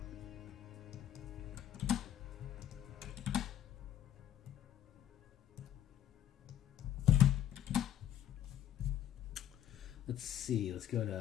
Let's see, let's go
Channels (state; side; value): quieter; right; 10.7 dB